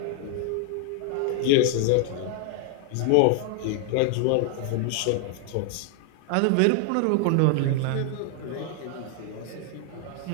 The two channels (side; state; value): both; different; correlation 0.00